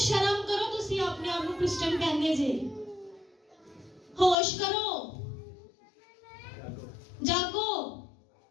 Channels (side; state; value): right; drops out; at 4.4 s